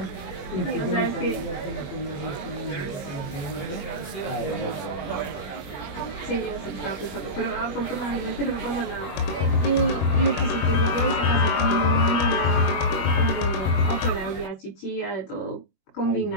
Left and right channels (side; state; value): right; late; 21 ms